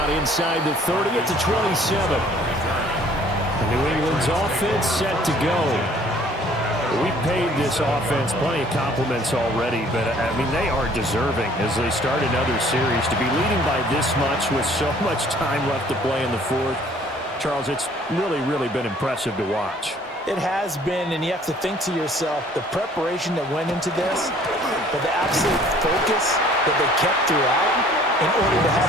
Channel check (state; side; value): normal; both; correlation 0.56